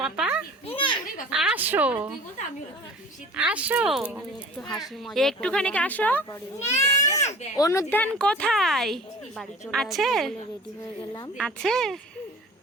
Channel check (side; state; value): both; normal; correlation 0.43